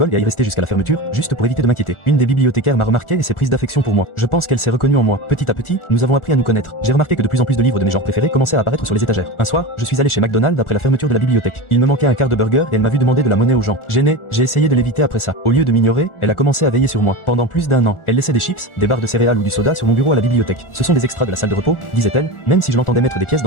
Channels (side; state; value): right; late; 1.4 ms